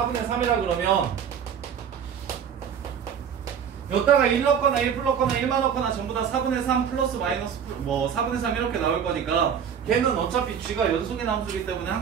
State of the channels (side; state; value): left; quieter; 7.9 dB